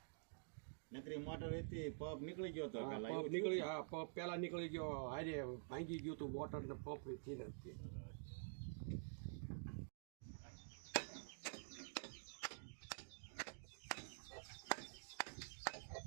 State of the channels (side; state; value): left; silent; digital silence